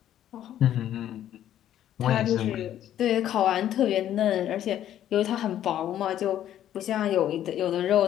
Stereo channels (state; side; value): quieter; right; 11.4 dB